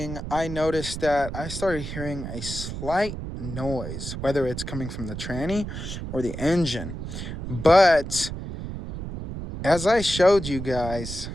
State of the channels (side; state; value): right; noise; rumble, 7 dB below the sound